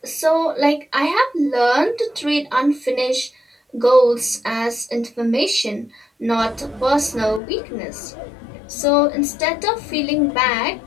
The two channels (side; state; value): right; drops out; at 7.4 s